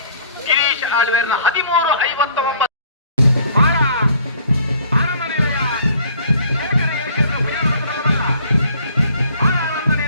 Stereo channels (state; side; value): inverted; both; correlation -0.55